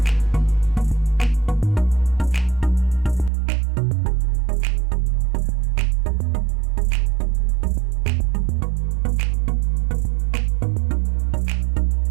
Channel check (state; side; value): drops out; left; at 3.3 s